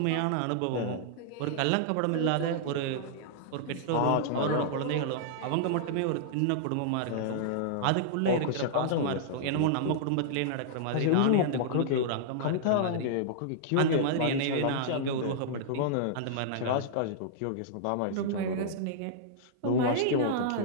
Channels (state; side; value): different; both; correlation -0.01